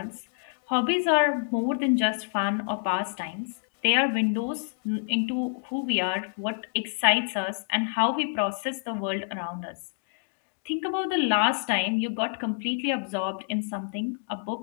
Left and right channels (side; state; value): right; silent; digital silence